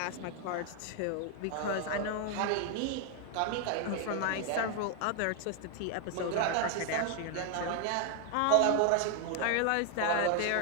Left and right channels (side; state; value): both; different; correlation 0.00